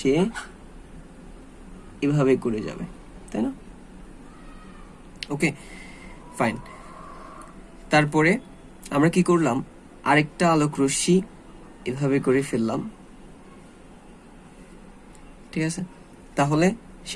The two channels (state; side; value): identical; both; correlation 1.00